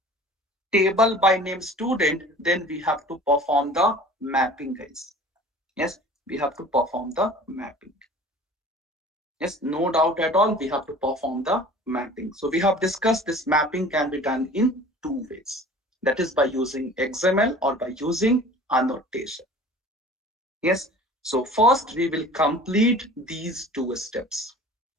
table by name student, then we have to perform the mapping, guys. Yes, we have to perform the mapping. Yes, no doubt at all, we have to perform the mapping. So we have discussed this mapping can be done in two ways. That is by using XML or by using annotation. Yes, so first we will complete these two steps.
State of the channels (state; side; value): normal; both; correlation 0.44